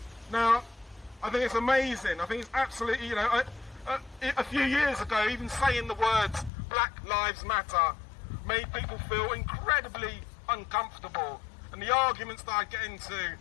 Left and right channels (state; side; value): drops out; right; at 6.5 s